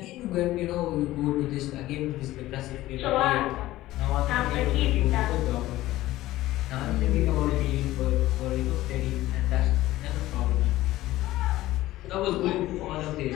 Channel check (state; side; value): quieter; right; 16.2 dB